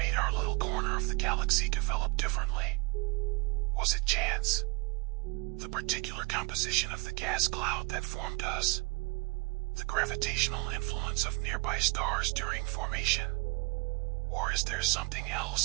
our little corner of the galaxy develop differently? Was it chance? The particular composition of the gas cloud that formed us? The gravitational influence of nearby stars during formation? Or is there something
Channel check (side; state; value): left; quieter; 28.2 dB